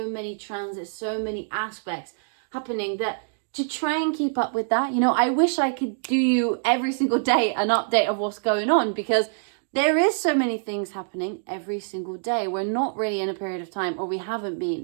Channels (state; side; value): silent; left; digital silence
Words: many transits, so many aspects happening that to try and keep up with that, you know, I wish I could do you every single day an update of what's going on, because there is so many things happening every single day. We're not really in a period of time, or we haven't